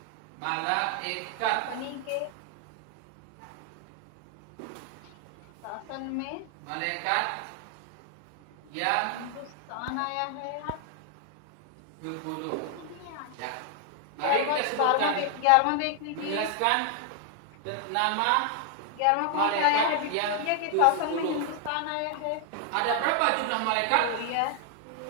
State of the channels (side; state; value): both; different; correlation 0.00